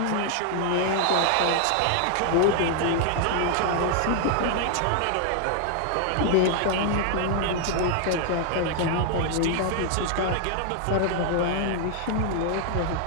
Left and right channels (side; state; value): both; different; correlation 0.00